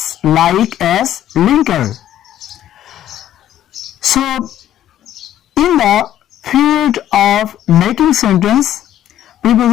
linker. So in the field of making sentence,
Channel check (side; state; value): right; quieter; 11.9 dB